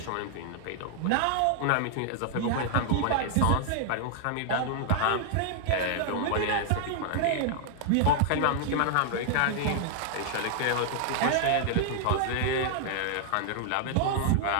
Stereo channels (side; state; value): both; different; correlation 0.00